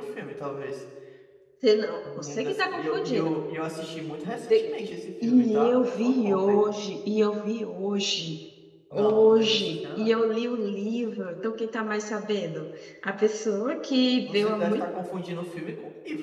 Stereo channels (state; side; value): identical; both; correlation 1.00